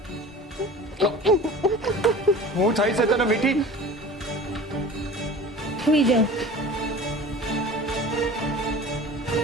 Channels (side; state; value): both; normal; correlation 0.40